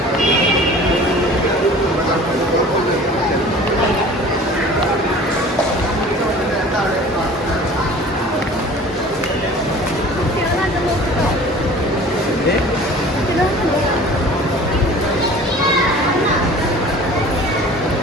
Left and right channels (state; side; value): normal; both; correlation 0.44